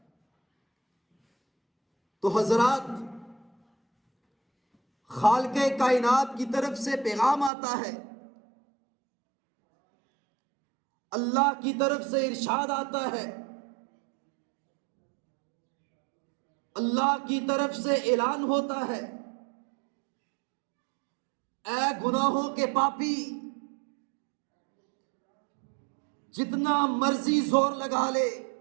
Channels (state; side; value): drops out; left; at 7.5 s